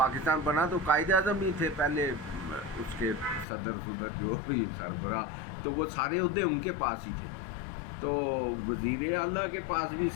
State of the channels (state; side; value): drops out; right; at 3.5 s